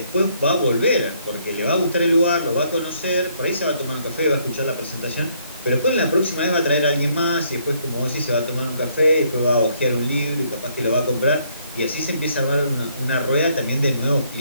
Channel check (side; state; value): both; inverted; correlation -0.68